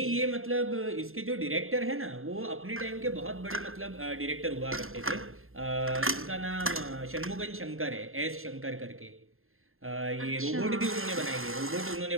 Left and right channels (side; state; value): left; late; 0.61 ms